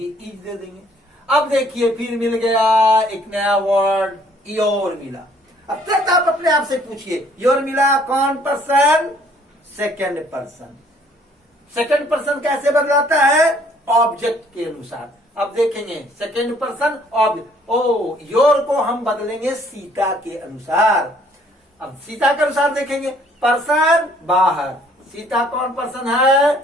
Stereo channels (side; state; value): both; normal; correlation 0.61